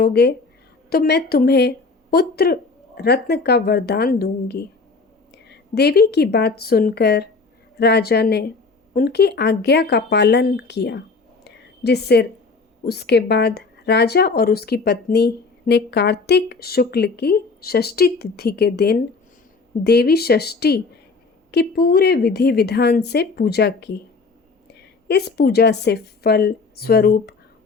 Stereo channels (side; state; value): right; quieter; 4.2 dB